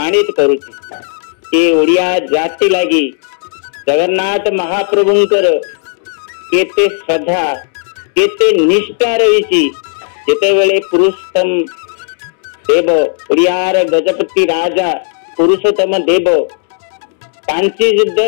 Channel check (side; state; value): right; silent; digital silence